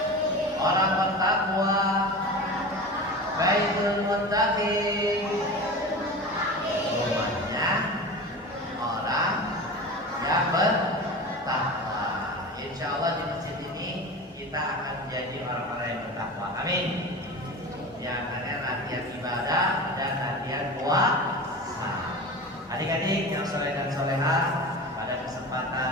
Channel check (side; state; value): both; normal; correlation 0.31